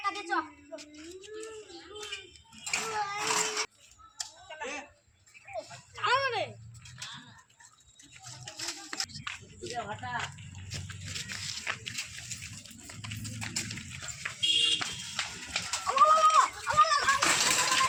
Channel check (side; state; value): both; identical; correlation 1.00